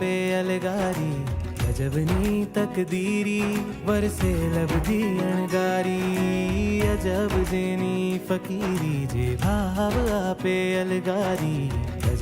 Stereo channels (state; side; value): identical; both; correlation 1.00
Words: अलगारी अजबनी तकदीरी वरसे लबधी अणगारी अजब जेनी फकीरी जे भाव आपे अलगारी